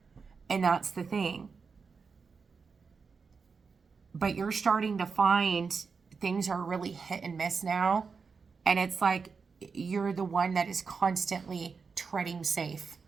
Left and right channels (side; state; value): left; quieter; 5.2 dB